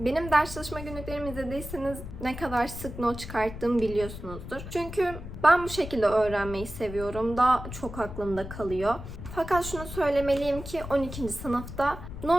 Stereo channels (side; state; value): left; noise; rumble, 10 dB below the sound